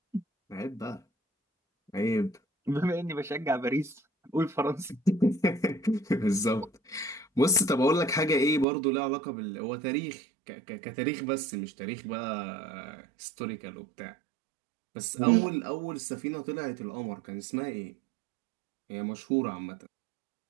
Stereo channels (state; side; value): drops out; left; at 8.7 s